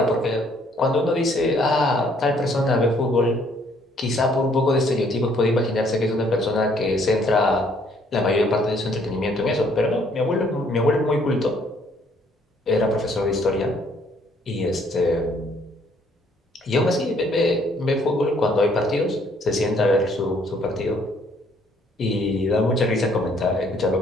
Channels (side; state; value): both; normal; correlation 0.64